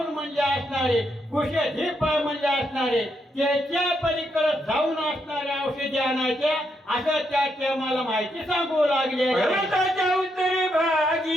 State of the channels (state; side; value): normal; both; correlation 0.79